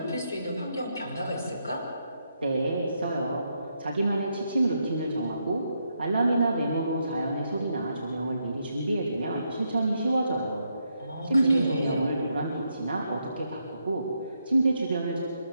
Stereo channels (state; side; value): inverted; both; correlation -0.80